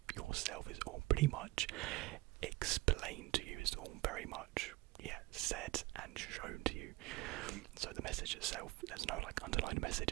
yourself. It's all pretty much explained to you. It's all very much said and shown to you. So the message itself, there's no like underlying message.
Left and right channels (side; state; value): left; quieter; 21.1 dB